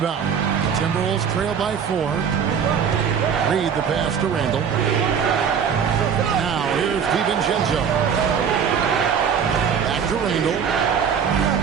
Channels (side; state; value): left; quieter; 7.3 dB